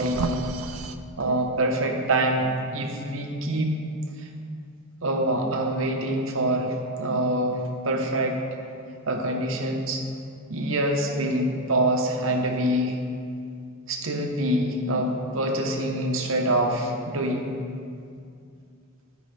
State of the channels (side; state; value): both; normal; correlation 0.06